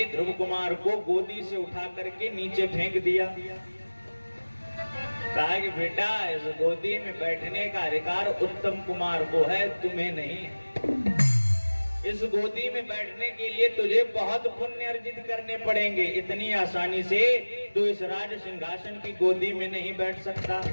ध्रुव कुमार को गोदी से उठा करके नीचे फेंक दिया। कहा कि बेटा, इस गोदी में बैठने का अधिकार उत्तम कुमार को है, तुम्हें नहीं। इस गोदी में बैठने के लिए तुझे बहुत पुण्य अर्जित करने पड़ेंगे, इतनी आसानी से तू इस राज सिंहासन की गोदी में नहीं बैठ सकता।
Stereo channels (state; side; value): inverted; both; correlation -1.00